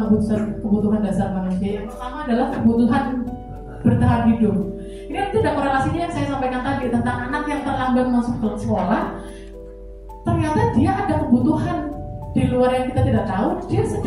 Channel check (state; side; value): identical; both; correlation 1.00